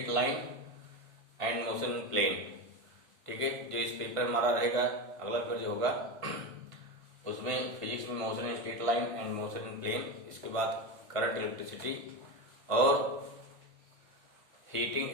line and motion in plane. ठीक है, जो इस पेपर में हमारा रहेगा अगला पेपर जो होगा उसमें फिजिक्स में motion in straight line and motion in plane, इसके बाद करंट इलेक्ट्रिसिटी और heating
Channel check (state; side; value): late; left; 1.5 ms